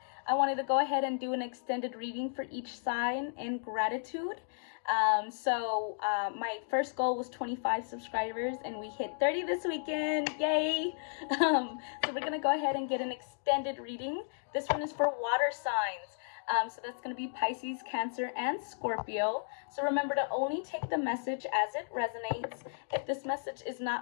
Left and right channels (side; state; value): right; silent; digital silence